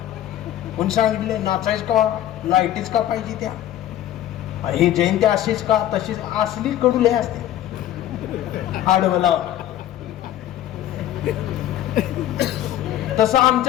कोणी सांगितले नाचायच का, लाईटीच का पाहिजे त्या, हे जयंती अशीच का तशीच, असली कडुले असते. आडवला तसं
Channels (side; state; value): right; quieter; 12.4 dB